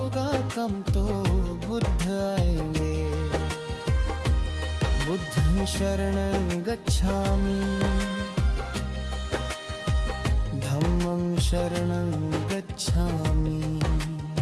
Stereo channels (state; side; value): identical; both; correlation 1.00